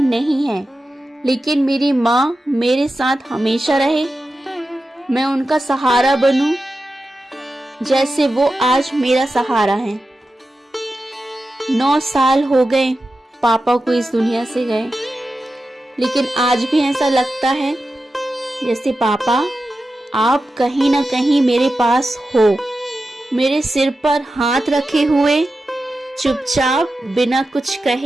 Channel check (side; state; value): both; normal; correlation 0.92